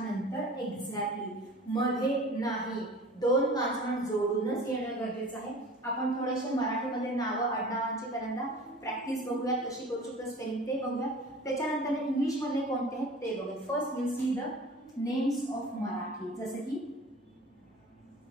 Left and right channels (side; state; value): both; normal; correlation 0.42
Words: एक्झॅक्टली मध्ये नाही. 2 कॉन्सोनंट जोडूनच येणं गरजेचं आहे. आपण थोडेसे मराठीमध्ये नावं आडनावांची पहिल्यांदा प्रॅक्टिस बघूया, कशी करू शकतो स्पेलिंग ते बघूया. त्याच्यानंतर इंग्लिश मध्ये कोणते आहेत ते बघूया. First will see the names of Marathi, जसे की